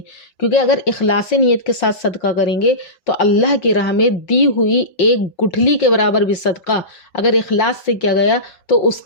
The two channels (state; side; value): late; right; 5.5 ms